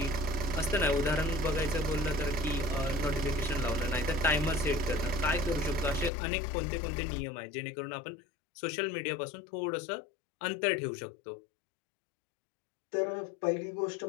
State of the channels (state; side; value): drops out; right; at 6.1 s